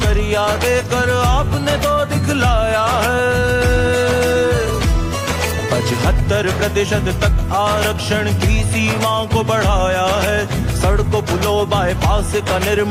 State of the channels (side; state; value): both; identical; correlation 1.00